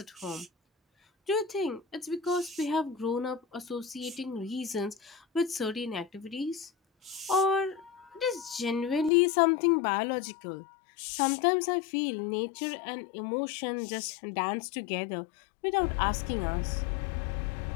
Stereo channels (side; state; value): right; drops out; at 9.1 s